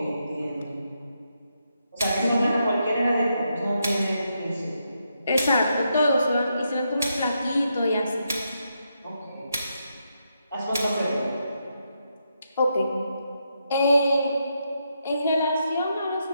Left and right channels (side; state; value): both; inverted; correlation -0.81